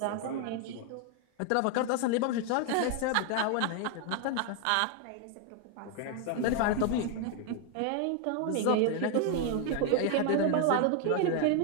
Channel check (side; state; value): both; different; correlation 0.01